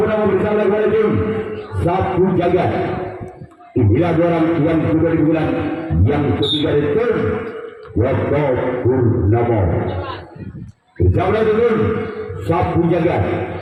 bersama dengan tim Sapu Jagat. Inilah orang yang kedua di bulan yang ketiga itu Joko Purnomo bersama dengan Sapu Jagat.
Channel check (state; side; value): identical; both; correlation 1.00